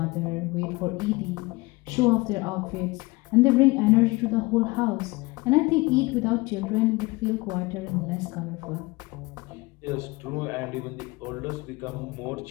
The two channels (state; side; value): quieter; right; 23.5 dB